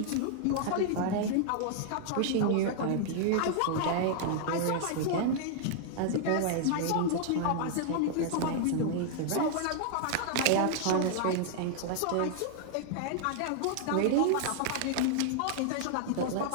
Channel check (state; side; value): different; both; correlation 0.00